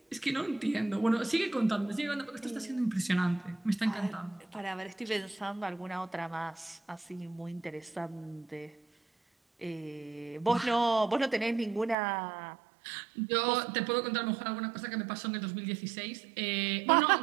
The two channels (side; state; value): left; drops out; at 12.0 s